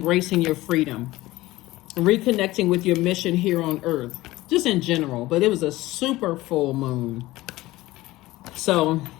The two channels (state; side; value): quieter; right; 18.1 dB